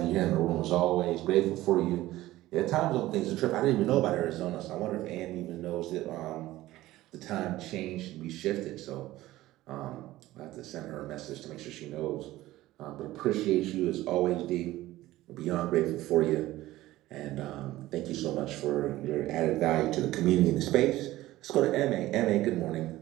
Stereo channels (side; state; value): left; quieter; 16.4 dB